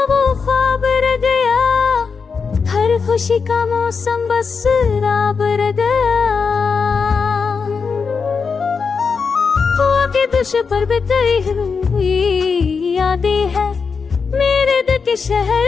वो ख्वाब रह गया, हर खुशी का मौसम बस राब रह गया। हुआ के दुश पर बिताई हुई यादें है, मेरे दिल के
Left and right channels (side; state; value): right; quieter; 5.4 dB